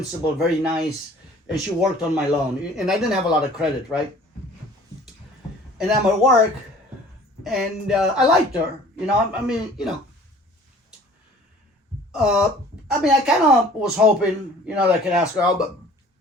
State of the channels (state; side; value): normal; both; correlation 0.49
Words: very nice. And she worked on my loan. And I didn't have a lot of credit, right? And I'm at work, and I liked her. I kind of was hoping, that I could ask her out, but,